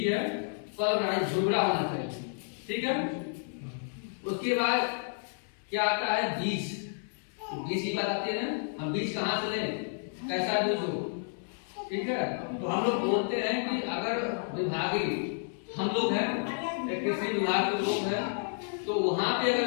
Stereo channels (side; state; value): right; silent; digital silence